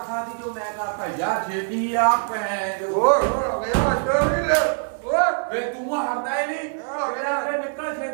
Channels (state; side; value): silent; left; 63 dB below the other